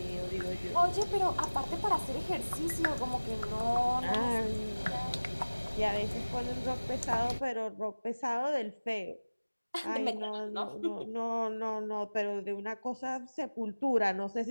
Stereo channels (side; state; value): both; inverted; correlation -1.00